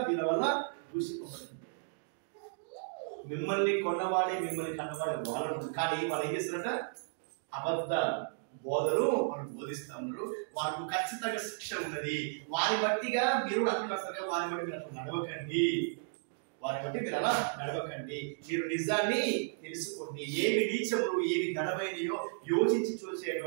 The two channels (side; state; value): left; silent; digital silence